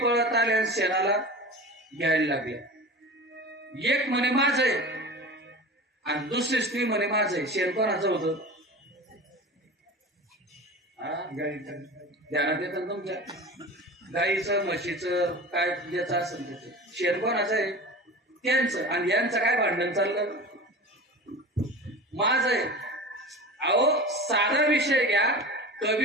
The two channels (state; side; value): normal; both; correlation 0.33